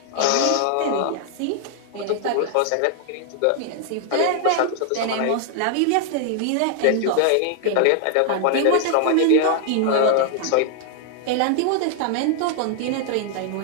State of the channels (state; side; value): different; both; correlation 0.00